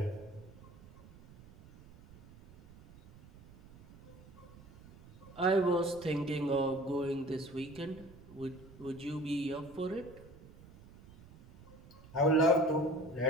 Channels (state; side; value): noise; right; rumble, 21 dB below the sound